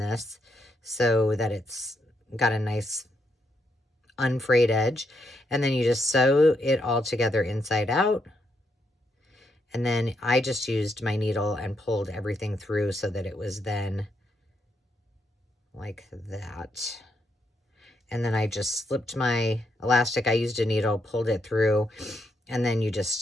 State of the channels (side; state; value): both; normal; correlation 0.78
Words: so that it's got a nice unfrayed edge. And then you just sew it all together inside out. And then I just used my needle and pulled everything through so that it was then like that. And then I just slipped my elastic. I used a needle, pulled it through, and then you